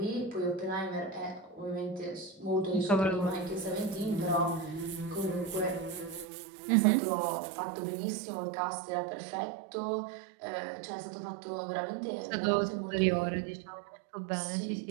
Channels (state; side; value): drops out; left; at 6.2 s